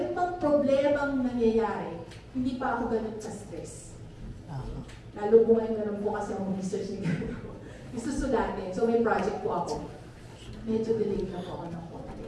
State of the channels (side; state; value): both; identical; correlation 1.00